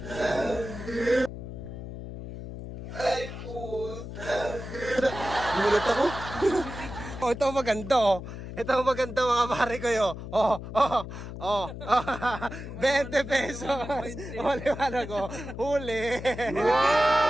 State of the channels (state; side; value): noise; left; hum, 9 dB below the sound